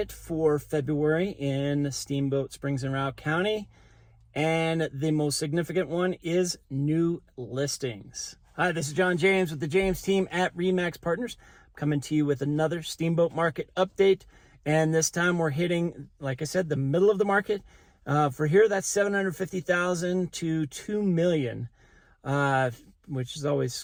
for February in Steamboat Springs and Routt County. And the most significant one is new listings. Hi, this is John James with the James team at RE/MAX Partners, coming to you with another Steamboat market update. And this time we're hitting, like I said, the middle of the market. For here, that's 750,000 to 2 million, which is always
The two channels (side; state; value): both; identical; correlation 1.00